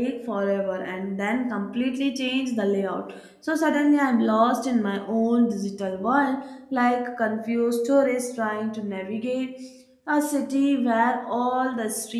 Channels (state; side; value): identical; both; correlation 1.00